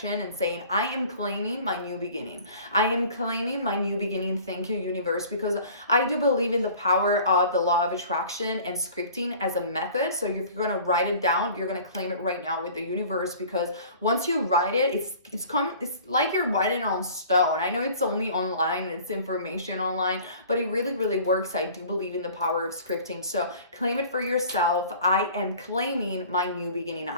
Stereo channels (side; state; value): both; inverted; correlation -0.47